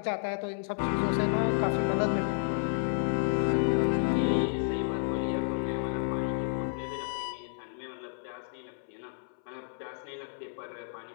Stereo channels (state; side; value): silent; right; 57 dB below the other